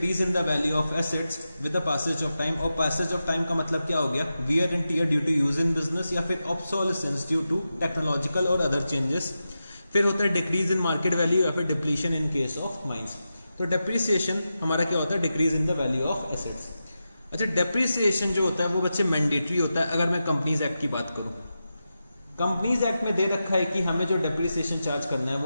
in the value of assets with the passage of time. और पैसेज ऑफ टाइम का मतलब क्या हो गया, wear and tear due to use in business, या फिर ऑब्सोलेसेंस ड्यू टू टेक्नोलॉजिकल और अदर चेंजेस। फिर होता है डिक्रीज इन मार्केट वैल्यू या फिर depletion in case of mines. तो डेप्रिसिएशन हमारा क्या होता है, decrease in the value of assets. अच्छा, डेप्रिसिएशन जो होता है वो बच्चे मैंडेटरी होता है। अगर मैं कंपनीज एक्ट की बात करूं, कंपनीज एक्ट में दे रखा है कि हमें जो डेप्रिसिएशन चार्ज करना है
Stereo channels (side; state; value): both; inverted; correlation -0.91